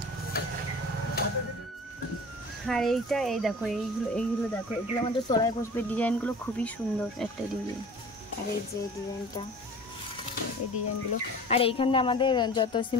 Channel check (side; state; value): both; normal; correlation 0.42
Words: আর এইটা এই দেখো এইগুলো দেখো, এগুলো আমাদের তলায় বসবে। ডিজাইনগুলো খুবই সুন্দর একটা ডিজাইন। আর এই যে ডিজাইনটা, এই ডিজাইনগুলো। আর এইখানে আমাদের যত